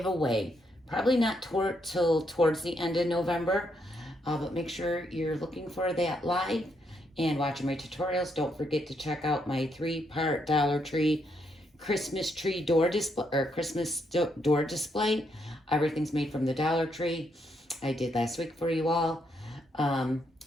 Probably not till towards the end of November, but make sure you're looking for that live and watching my tutorials. Don't forget to check out my 3-part Dollar Tree Christmas tree door display, or Christmas door display. Everything's made from the Dollar Tree. I did last week for you all. And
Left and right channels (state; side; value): normal; both; correlation 0.77